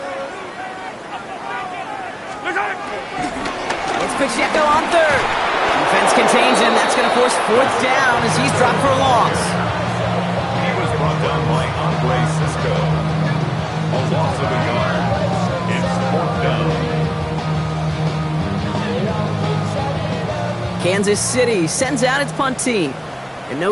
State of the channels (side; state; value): both; identical; correlation 1.00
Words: It's Pacheco on 3rd. Defense contains him. That's going to force 4th down as he's dropped for a loss. He was brought down by Andre Cisco. A loss of a yard. It's 4th down. Kansas City sends out its punt team. And